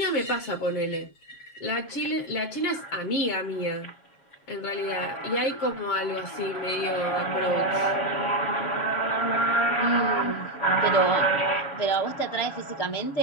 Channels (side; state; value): right; late; 7.3 ms